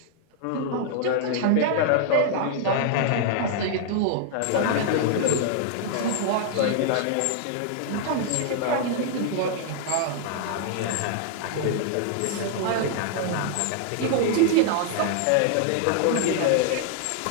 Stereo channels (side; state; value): both; different; correlation 0.00